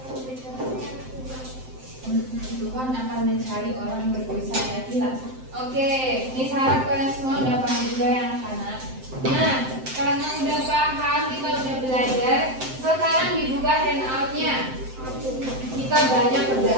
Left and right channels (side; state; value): left; late; 7.7 ms